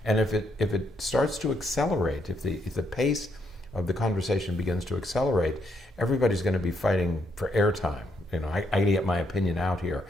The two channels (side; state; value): both; normal; correlation 0.75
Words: And if it starts to accelerate, if the pace of the conversation begins to accelerate, everybody's going to be fighting for airtime. I get my opinion out here.